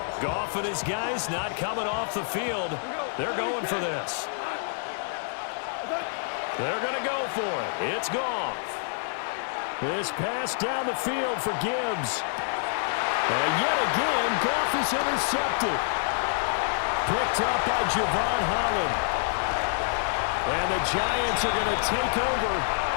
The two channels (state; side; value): silent; right; digital silence